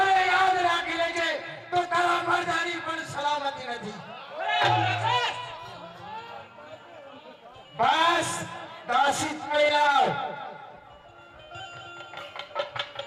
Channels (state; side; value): identical; both; correlation 1.00